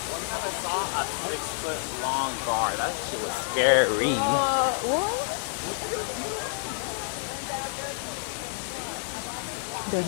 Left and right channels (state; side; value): silent; right; 58 dB below the other